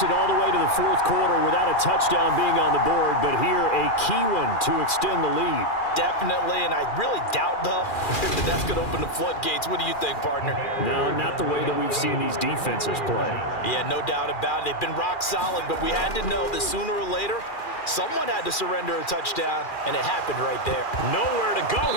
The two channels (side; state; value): right; late; 2.4 ms